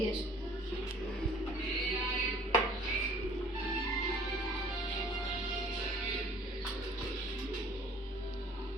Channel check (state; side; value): normal; both; correlation 0.53